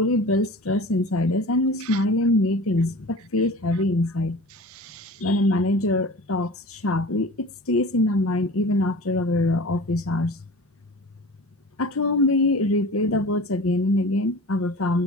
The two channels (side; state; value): both; normal; correlation 0.38